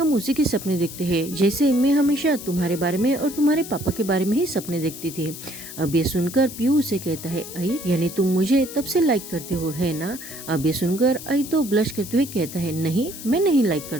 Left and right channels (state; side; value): noise; left; hiss, 12 dB below the sound